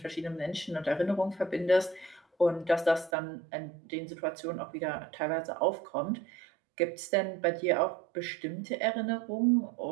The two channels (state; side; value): drops out; left; at 3.1 s